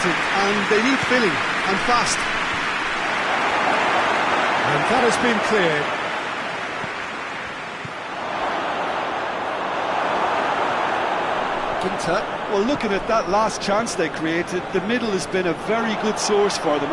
and they need filling, and fast. And that has been cleared. Ginter. Well, looking at that last chance they created, the middle has been a very good source for them,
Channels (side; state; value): both; identical; correlation 1.00